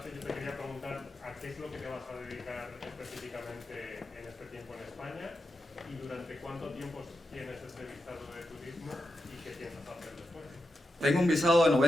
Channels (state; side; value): normal; both; correlation 0.89